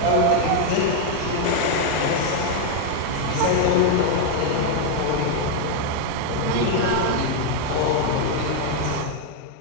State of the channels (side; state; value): both; different; correlation 0.00